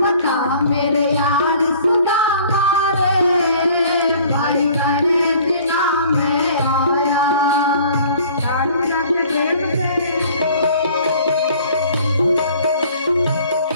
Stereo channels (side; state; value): both; inverted; correlation -0.52